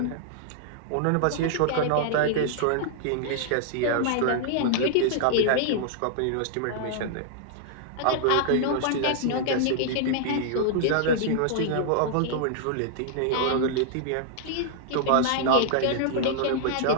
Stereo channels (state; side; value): different; both; correlation -0.01